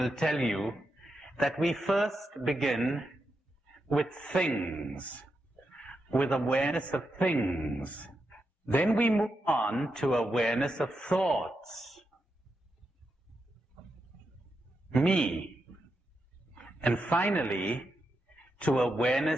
tell you that we first begin with things, with awareness of things. Then we move on to awareness of thoughts, me, and finally to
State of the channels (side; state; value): both; normal; correlation 0.85